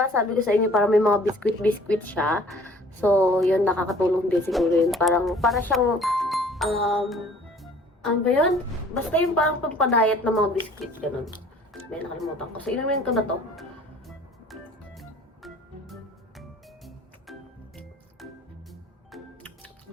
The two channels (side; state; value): both; normal; correlation 0.52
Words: Sabi ko sa inyo, parang may mga biscuit siya. So, yun, nakakatulong din siguro yun. Para siyang, ano ba yun? Basta yung parang pampadayat ng mga biscuit, ganun. May nakalimutan ko. So, inumin ko na to.